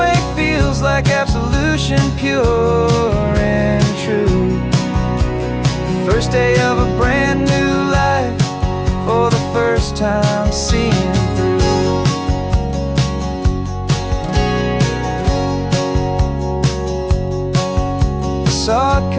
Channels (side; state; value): both; identical; correlation 1.00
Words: feels like absolution, pure and true. The first day of a brand new life, for the first time seeing through. Saw a